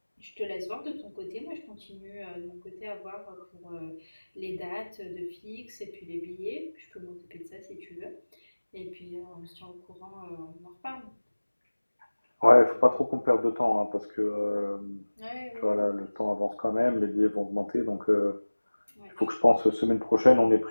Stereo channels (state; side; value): inverted; both; correlation -1.00